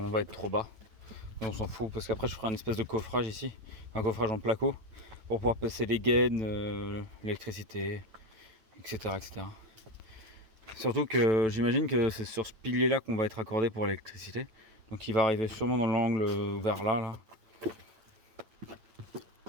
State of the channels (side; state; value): left; late; 9.1 ms